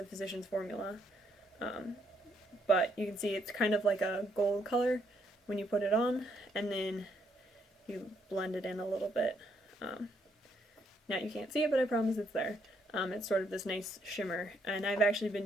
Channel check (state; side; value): normal; both; correlation 0.73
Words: Physicians Formula, but you can see it's kind of like a gold color when you put it on, and then you blend it in a little bit. Now you can't see it, but I promise it's there. It's sort of this nice shimmer, and I've actually been